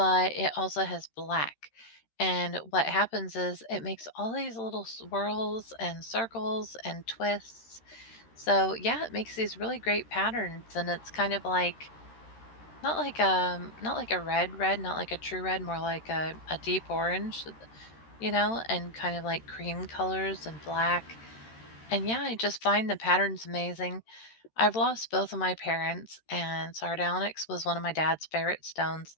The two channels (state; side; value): late; right; 13 ms